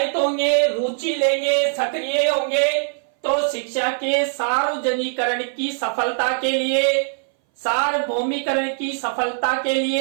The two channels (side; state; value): left; silent; 61 dB below the other